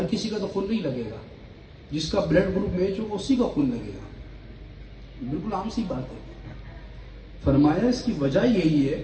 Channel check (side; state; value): both; identical; correlation 1.00